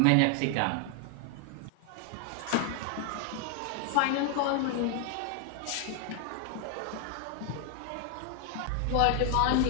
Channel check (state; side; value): different; both; correlation 0.00